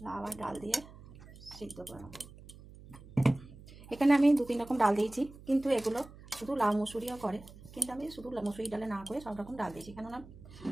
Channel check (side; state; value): right; noise; hum, 19 dB below the sound